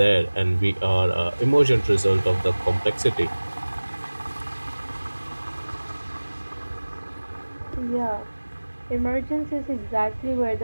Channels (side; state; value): both; inverted; correlation -1.00